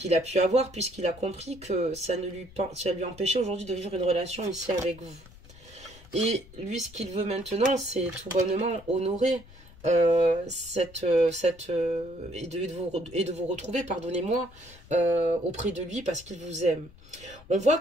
a pu avoir, puisqu'il a compris que ça lui empêchait aujourd'hui de vivre une relation ici avec vous. Et lui, ce qu'il veut maintenant, c'est tout bonnement honorer et de vous retrouver, pardonnez-moi, auprès de lui parce qu'il vous aime. On voit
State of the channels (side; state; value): left; noise; rumble, 21 dB below the sound